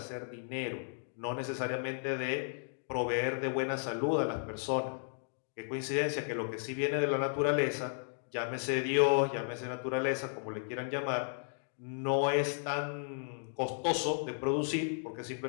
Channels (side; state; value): right; silent; 55 dB below the other